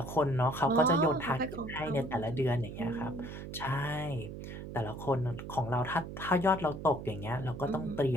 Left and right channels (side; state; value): right; noise; hum, 9 dB below the sound